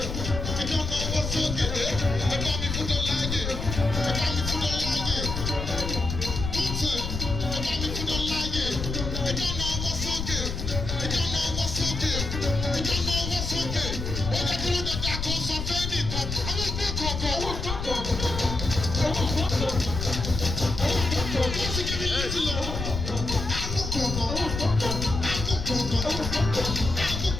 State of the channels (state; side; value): noise; left; rumble, 4 dB below the sound